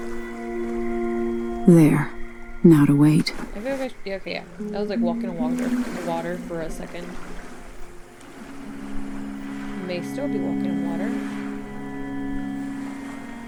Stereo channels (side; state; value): both; identical; correlation 1.00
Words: There. Now to wait. I feel like yeah, okay, yeah. That was like walking on water for a second. May still be walking on water.